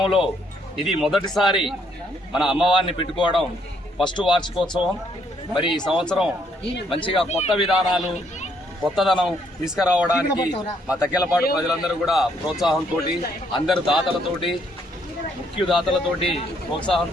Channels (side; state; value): both; normal; correlation 0.70